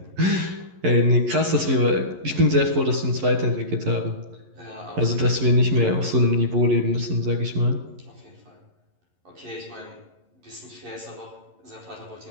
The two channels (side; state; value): left; late; 11 ms